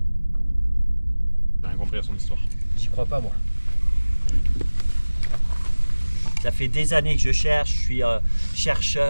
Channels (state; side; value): inverted; both; correlation -1.00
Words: J'ai rien compris à son histoire. J'y crois pas, moi. Ça fait des années que je cherche, je suis